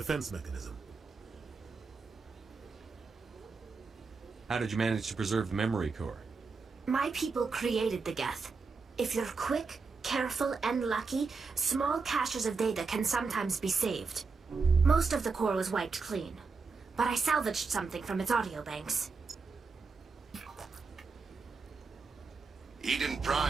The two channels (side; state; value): left; quieter; 4.6 dB